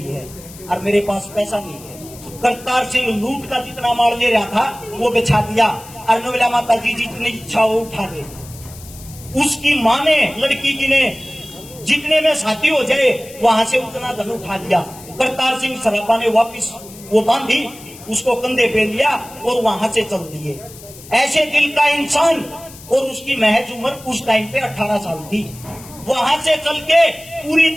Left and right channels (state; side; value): noise; left; hiss, 18 dB below the sound